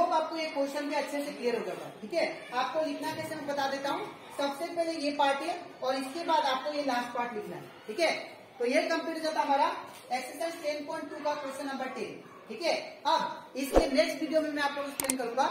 आपको ये क्वेश्चन भी अच्छे से क्लियर हो गया, ठीक है। आपको लिखना कैसे मैं बता देता हूँ। सबसे पहले ये पार्ट है और इसके बाद आपको ये लास्ट पार्ट लिखना है, ठीक है। तो ये कंप्लीट हो जाता हमारा एक्सरसाइज 10.2 का क्वेश्चन नंबर 10, ठीक है। अब इसके नेक्स्ट वीडियो में मैं आप लोग एक्सप्लेन करूंगा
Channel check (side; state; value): both; identical; correlation 1.00